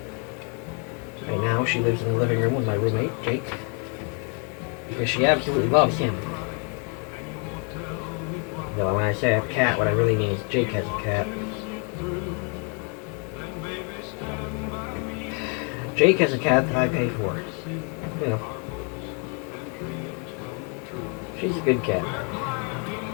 Right now, she lives in the living room with my roommate, Jake, because she absolutely loves him. Though when I say I have a cat, what I really mean is Jake has a cat. Jake has a cat that I pay for. You know. She's a good cat.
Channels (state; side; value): quieter; right; 37.2 dB